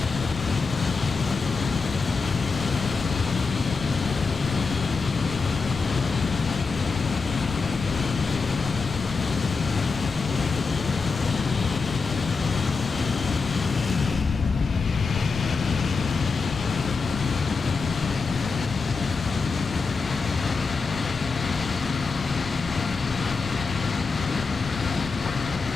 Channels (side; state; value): right; quieter; 4.5 dB